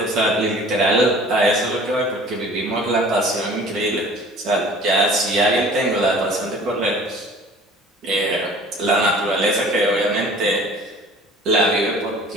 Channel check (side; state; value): both; normal; correlation 0.48